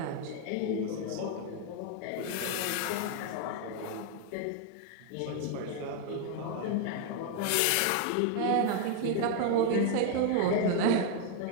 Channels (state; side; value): different; both; correlation 0.00